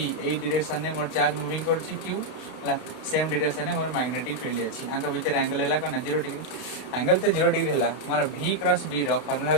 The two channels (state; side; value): late; right; 32 ms